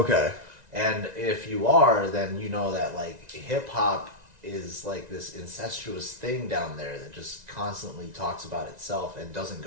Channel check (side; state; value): left; late; 1.9 ms